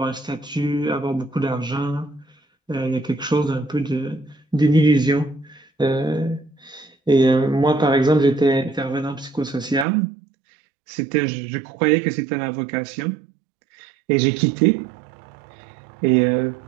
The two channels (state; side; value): drops out; left; at 9.9 s